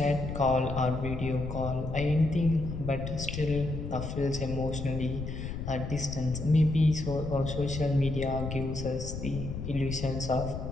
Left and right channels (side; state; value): left; noise; rumble, 6 dB below the sound